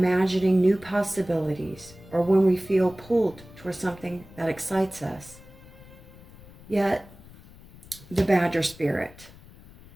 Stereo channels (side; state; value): left; noise; rumble, 21 dB below the sound